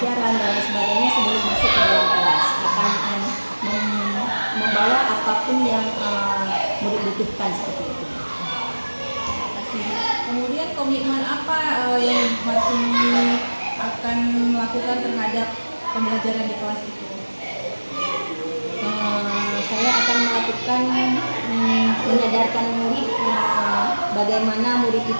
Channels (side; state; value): both; inverted; correlation -1.00